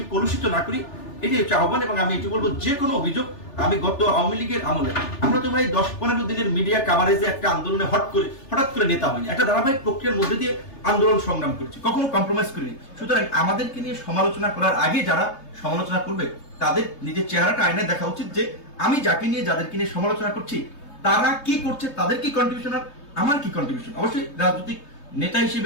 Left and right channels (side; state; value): right; late; 3.3 ms